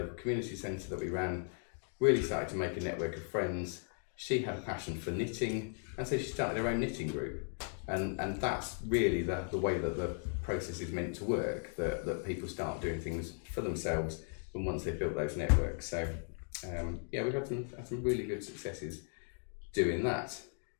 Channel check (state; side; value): silent; right; 53 dB below the other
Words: community centre that we ran, really started to make a network of friends. She had a passion for knitting, and so she started her own knitting group. And that's really the way that the process is meant to work, that people start doing things for themselves and once they've built those networks. So we've had some really good successes doing that.